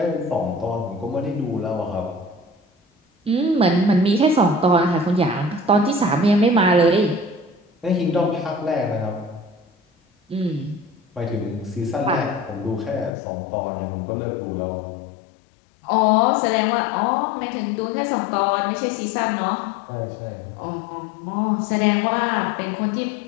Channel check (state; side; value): drops out; right; at 13.1 s